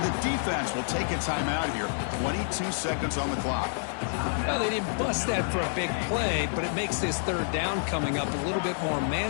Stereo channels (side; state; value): right; silent; digital silence